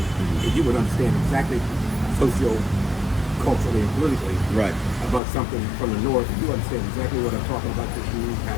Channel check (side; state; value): right; drops out; at 5.2 s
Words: and you would understand exactly culturally and politically Right. about something from the north, and you understand exactly what I'm talking about because you